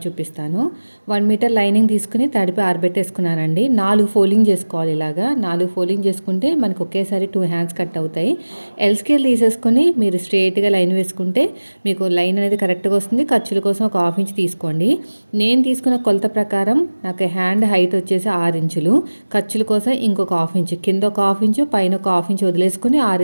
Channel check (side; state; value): both; inverted; correlation -1.00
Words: చూపిస్తాను. 1 మీటర్ లైనింగ్ తీసుకుని తడిపి ఆరబెట్టేసుకున్నానండి. 4 ఫోల్డింగ్ చేసుకోవాలి. ఇలాగా 4 ఫోల్డింగ్ చేసుకుంటే మనకు ఒకేసారి 2 హ్యాండ్స్ కట్ అవుతాయి. ఎల్ స్కేల్ తీసేసుకొని మీరు స్ట్రేట్గా లైన్ వేసుకుంటే మీకు లైన్ అనేది కరెక్ట్గా వస్తుంది. ఖర్చుల కోసం ఒక 1/2 ఇంచ్ తీసుకోండి. నేను తీసుకున్న కొలత ప్రకారం నాకు హ్యాండ్ హైట్ వచ్చేసి 6 ఇంచులు. ఖర్చుల కోసం ఇంకొక 1/2 ఇంచ్, కింద ఒక 1/2 ఇంచ్, పైన ఒక 1/2 ఇంచ్ వదిలేసుకుని